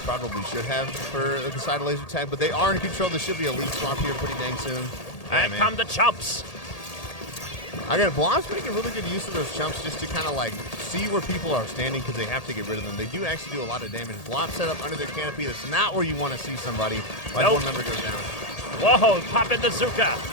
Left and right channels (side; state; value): right; late; 1.8 ms